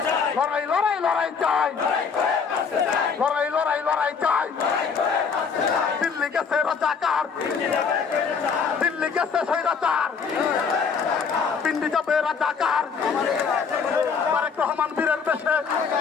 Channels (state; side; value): quieter; right; 5.8 dB